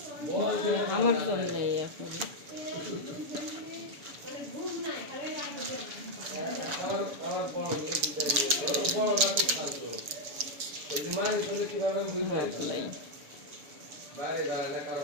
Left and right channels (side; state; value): left; late; 7.1 ms